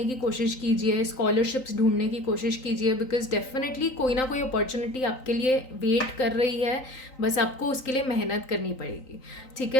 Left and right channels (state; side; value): late; right; 3.9 ms